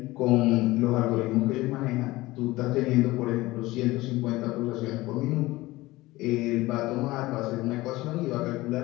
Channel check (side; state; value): right; quieter; 19.2 dB